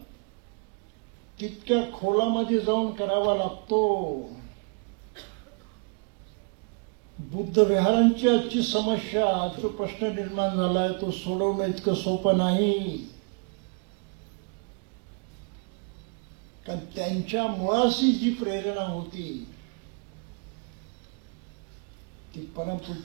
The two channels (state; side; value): quieter; left; 38.7 dB